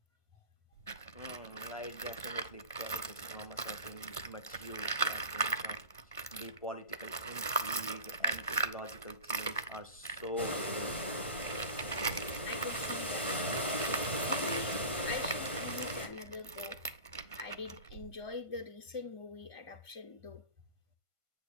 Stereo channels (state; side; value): late; right; 1.5 ms